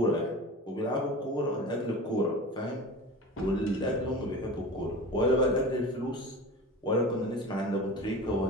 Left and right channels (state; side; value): normal; both; correlation 0.33